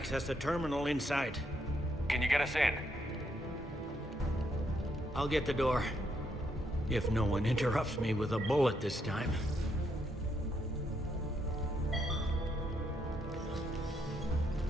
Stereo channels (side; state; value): both; normal; correlation 0.76